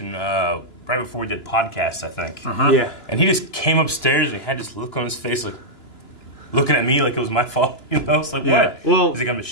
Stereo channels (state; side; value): late; right; 2.9 ms